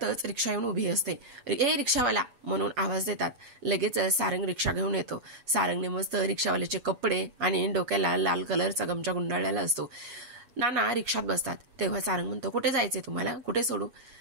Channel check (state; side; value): late; left; 8.2 ms